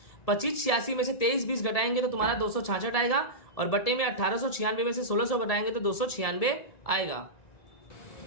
25 86 में से 23 20 घटाएंगे तो तुम्हारा 266 आएगा और बट्टे में 1896 में से 1600 घटाएंगे तो 296 आएगा।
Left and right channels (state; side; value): late; right; 1.7 ms